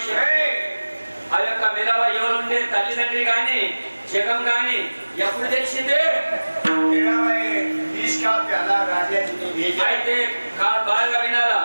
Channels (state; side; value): inverted; both; correlation -1.00